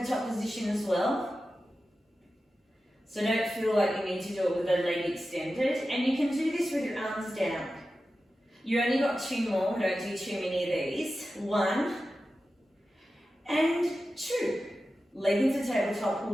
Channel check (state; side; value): normal; both; correlation 0.93